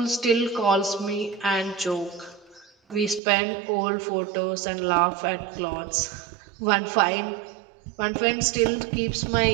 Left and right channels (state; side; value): drops out; left; at 3.2 s